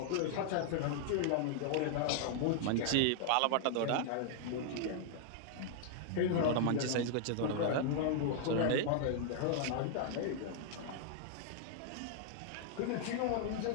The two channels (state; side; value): different; both; correlation -0.01